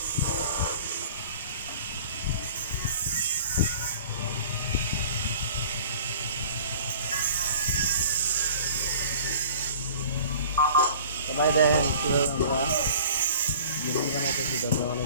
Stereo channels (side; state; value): both; inverted; correlation -0.46